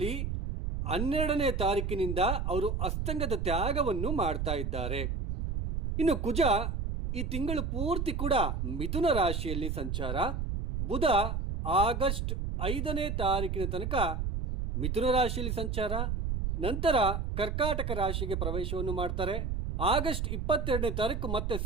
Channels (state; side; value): noise; right; rumble, 2 dB below the sound